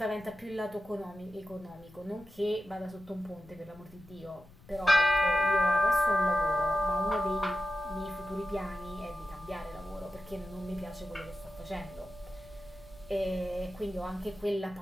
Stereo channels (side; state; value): left; noise; rumble, 23 dB below the sound